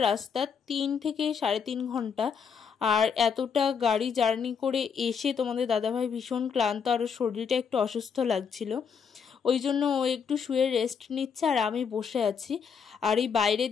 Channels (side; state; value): right; quieter; 6.6 dB